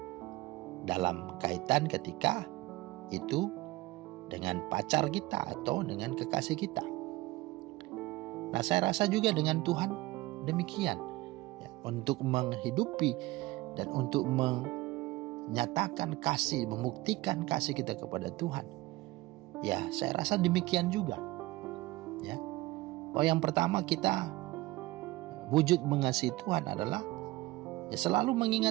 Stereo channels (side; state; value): left; quieter; 19.5 dB